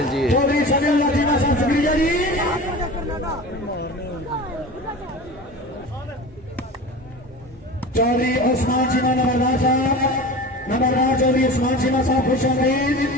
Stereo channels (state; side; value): normal; both; correlation 0.33